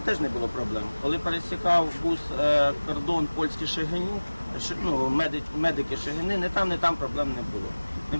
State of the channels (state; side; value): inverted; both; correlation -1.00